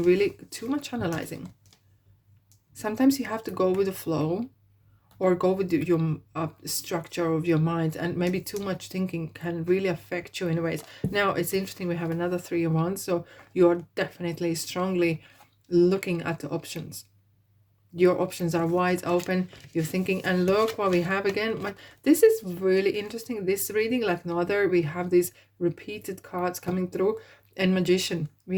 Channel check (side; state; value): both; identical; correlation 1.00